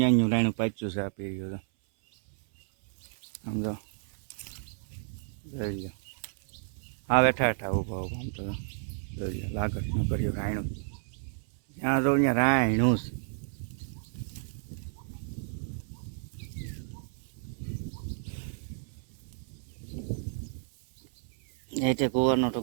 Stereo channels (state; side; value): silent; left; 57 dB below the other